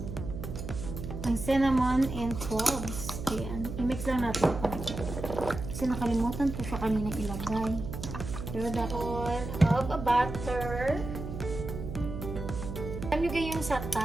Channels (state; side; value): noise; right; hum, 7 dB below the sound